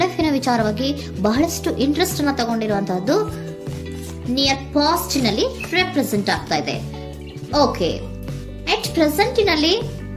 ಲೈಫ್ ನ ವಿಚಾರವಾಗಿ ಬಹಳಷ್ಟು ಇಂಟ್ರೆಸ್ಟ್ ಅನ್ನ ತಗೊಂಡಿರುವಂತಹದ್ದು ನಿಯರ್ ಪಾಸ್ಟ್ ನಲ್ಲಿ ರೆಪ್ರೆಸೆಂಟ್ ಆಗ್ತಾ ಇದೆ. ಓಕೆ, ಎಟ್ ಪ್ರೆಸೆಂಟ್ ನಲ್ಲಿ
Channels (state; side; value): identical; both; correlation 1.00